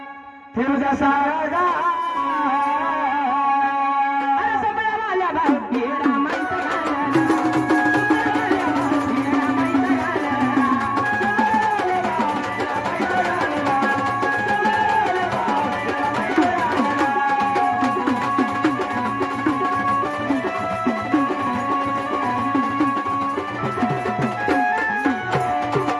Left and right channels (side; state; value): both; identical; correlation 1.00